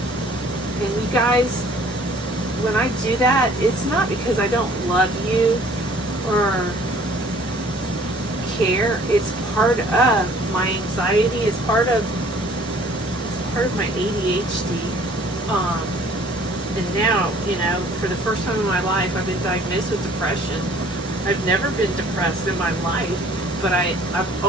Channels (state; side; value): normal; both; correlation 0.54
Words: And you guys, when I do that, it's not because I don't love you or care. It's part of my anxiety. It's part of my ADHD. And now, you know, for the first time in my life, I've been diagnosed with depression. I've never been depressed in my life, but I've